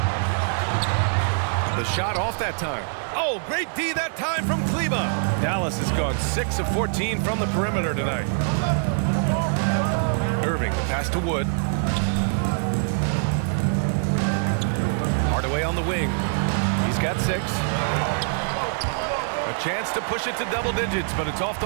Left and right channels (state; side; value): silent; left; digital silence